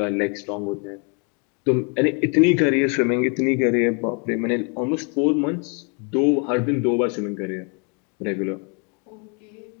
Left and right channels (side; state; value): right; quieter; 36.5 dB